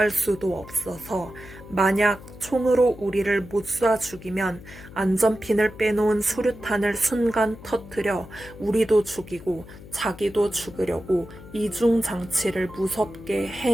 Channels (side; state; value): left; noise; hum, 17 dB below the sound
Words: 수도 없어서 만약 총으로 우리를 못 쏴 죽이면 안전핀을 빼놓은 수류탄을 순간 터뜨려 우리도 죽이고 자기도 죽으려고 이중장치를 무섭게